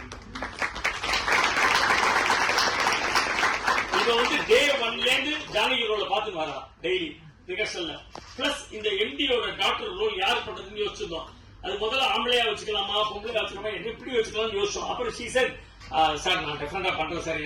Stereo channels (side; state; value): both; identical; correlation 1.00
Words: இத வந்து டே 1ல இருந்து ஜானகி ரோல பாத்துட்டு வரா டெய்லி ரிகர்சல்ல. பிளஸ் இந்த எம்டியோட டாக்டர் ரோல் யார் பண்றதுன்னு யோசிச்சிருந்தோம். அது முதல்ல ஆம்பளையா வச்சுக்கலாமா பொம்பளையா வச்சுக்கலாமா எப்படி வச்சுக்கலாம்னு யோசிச்சோம். அப்புறம் ஷீ செட் சார் நான் டெஃபரெண்டா பண்றேன் சார்,